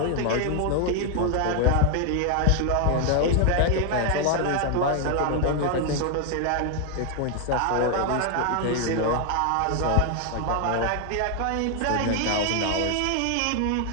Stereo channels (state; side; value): different; both; correlation 0.00